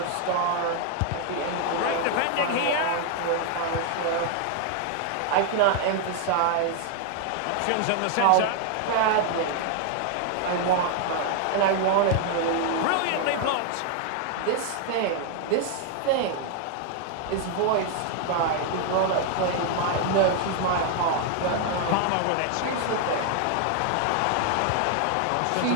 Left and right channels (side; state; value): both; different; correlation 0.00